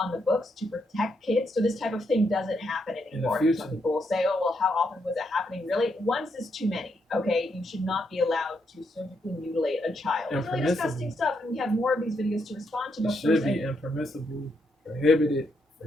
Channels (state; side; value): normal; both; correlation 0.79